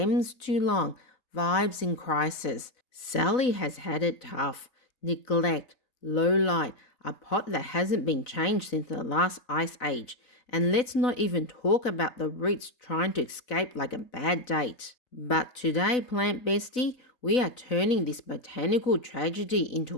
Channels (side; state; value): right; late; 4.0 ms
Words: too long, vibes in crisis. Sally has had it tough. Neglect, low light, a pot that hasn't been changed since the last ice age. And let's not even talk about the roots trying to escape like a bad date. But today, Plant Bestie, we are turning this botanical tragedy